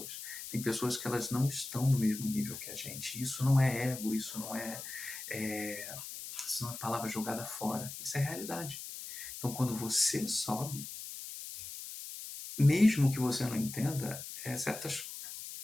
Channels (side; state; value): left; noise; hiss, 9 dB below the sound